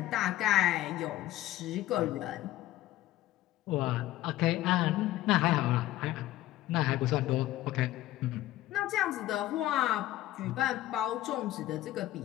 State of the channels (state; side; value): quieter; right; 14.9 dB